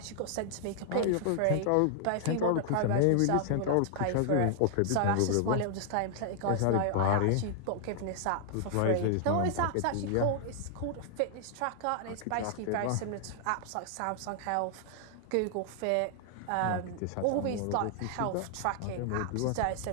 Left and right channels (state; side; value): different; both; correlation -0.01